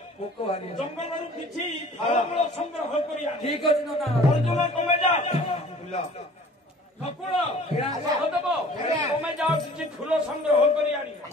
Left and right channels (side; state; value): both; normal; correlation 0.49